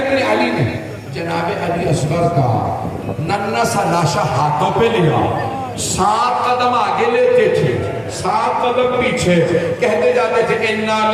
علی نے جناب علی اصغر کا ننھا سا لاشا ہاتھوں پہ لیا, 7 قدم آگے لیتے تھے, 7 قدم پیچھے, کہتے جاتے تھے انا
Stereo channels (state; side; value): identical; both; correlation 1.00